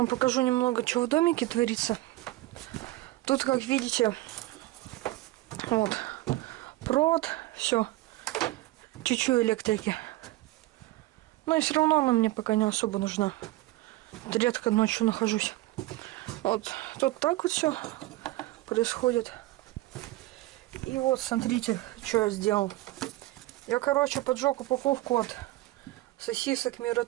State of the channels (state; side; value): quieter; left; 18.1 dB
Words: покажу немного, что в домике творится. Тут, как видите, вот, провод, все, чуть-чуть электрики. Но и все равно она мне пока не особо нужна. Редко ночью нахожусь. Вот тут так вот все происходит. И вот смотрите, что я сделал. Я, короче, поджег упаковку от сосисок